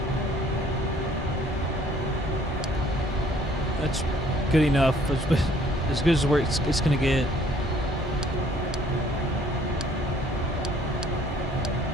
That's good enough. As good as it's going to get.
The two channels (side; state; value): both; normal; correlation 0.60